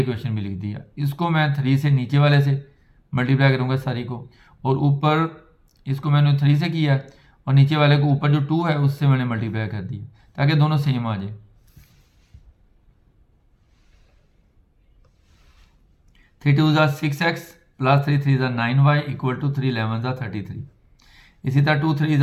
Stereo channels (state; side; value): identical; both; correlation 1.00